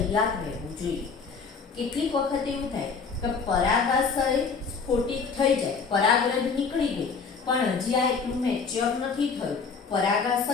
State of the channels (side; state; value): right; quieter; 5.2 dB